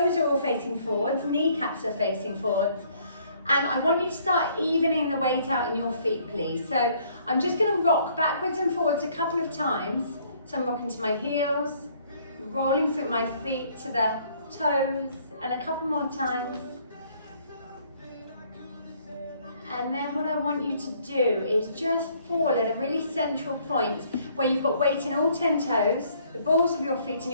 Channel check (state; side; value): inverted; both; correlation -0.63